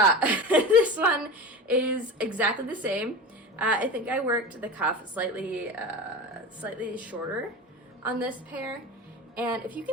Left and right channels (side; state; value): both; normal; correlation 0.29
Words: This one is exactly the same. I think I worked the cuff slightly shorter on this pair, and if you